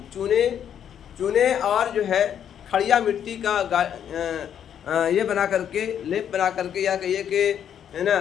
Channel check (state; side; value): quieter; right; 9.1 dB